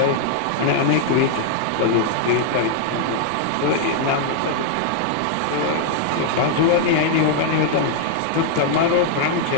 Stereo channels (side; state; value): both; different; correlation 0.00